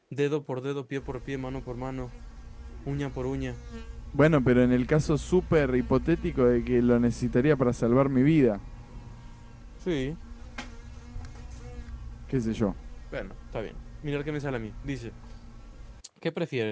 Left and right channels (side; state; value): both; identical; correlation 1.00